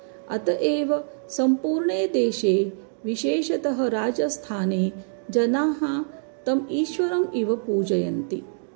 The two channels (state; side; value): silent; left; digital silence